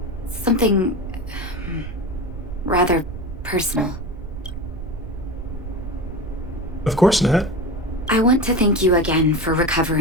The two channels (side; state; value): right; noise; rumble, 9 dB below the sound